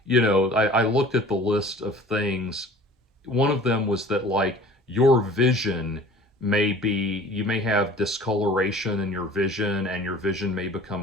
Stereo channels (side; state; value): both; normal; correlation 0.46